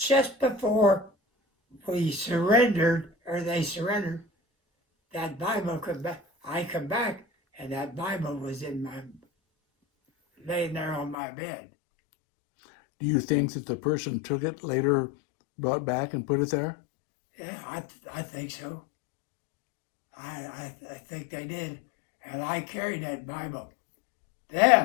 before we surrendered, or they surrendered, that Bible come back. I come back, and that Bible was laying there on my bed. Do you think that the person took it later, brought back and put it there? Yeah, I think so. I think they did. And I carried that Bible.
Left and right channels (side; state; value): right; drops out; at 11.2 s